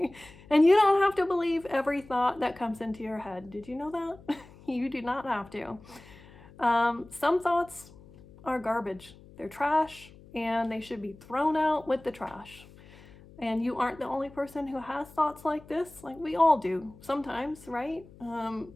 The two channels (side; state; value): left; noise; hum, 22 dB below the sound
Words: And you don't have to believe every thought that comes into your head. Did you know that? You do not have to. Some thoughts are garbage. They're trash, and they should be thrown out with the trash. And you aren't the only person who has thoughts like this. Like, we all do sometimes, right?